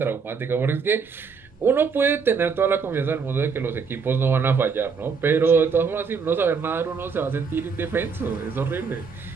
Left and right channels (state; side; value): quieter; left; 5.5 dB